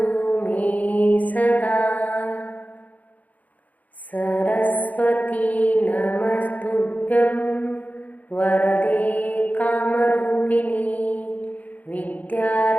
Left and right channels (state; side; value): late; right; 0.076 ms